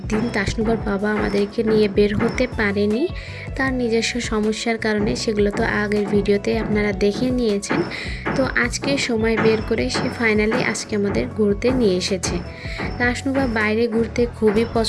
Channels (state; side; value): identical; both; correlation 1.00